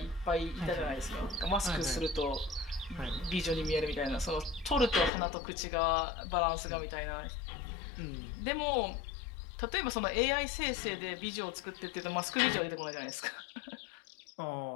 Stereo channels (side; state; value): right; drops out; at 5.1 s